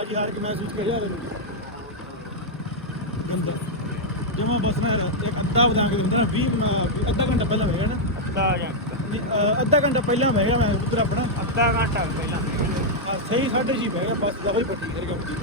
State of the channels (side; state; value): both; normal; correlation -0.03